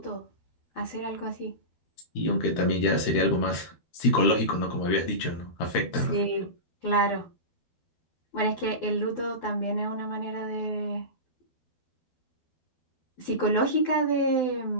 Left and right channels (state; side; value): late; right; 12 ms